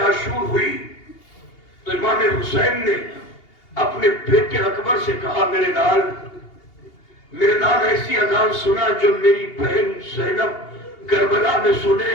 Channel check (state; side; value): late; right; 2.8 ms